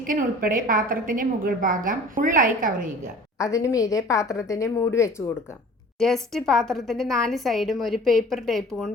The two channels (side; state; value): both; normal; correlation 0.45